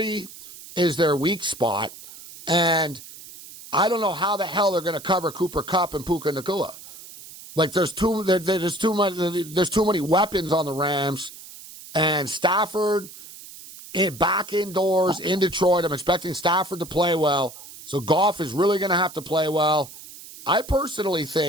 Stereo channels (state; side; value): noise; right; hiss, 16 dB below the sound